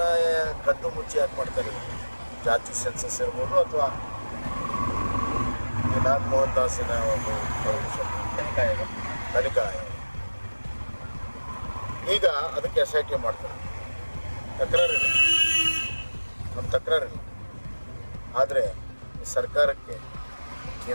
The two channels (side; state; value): both; inverted; correlation -1.00